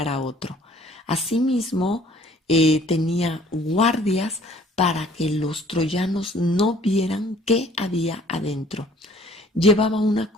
a otro. Asimismo, tenía guardias para que los troyanos no vieran qué había adentro. Llevaba una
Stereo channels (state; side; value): normal; both; correlation 0.56